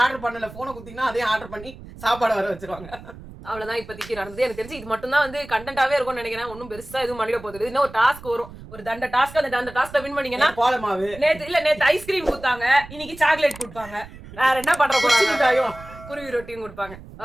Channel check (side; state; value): right; noise; rumble, 17 dB below the sound